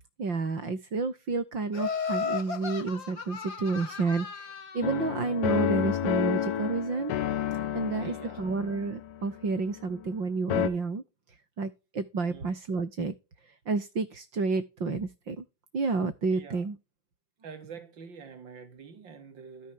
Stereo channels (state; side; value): late; left; 5.7 ms